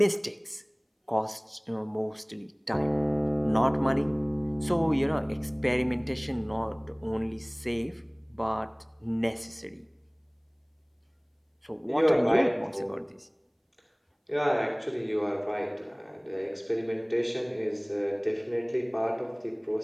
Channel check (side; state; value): both; identical; correlation 1.00